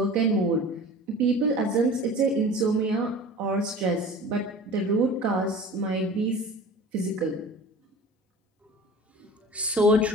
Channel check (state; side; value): normal; both; correlation 0.40